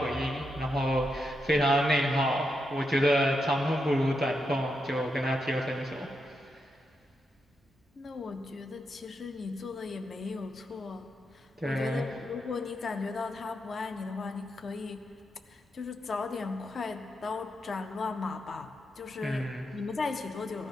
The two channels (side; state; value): both; normal; correlation 0.84